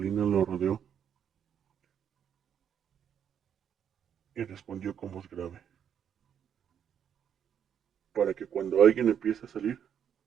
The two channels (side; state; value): left; quieter; 8.6 dB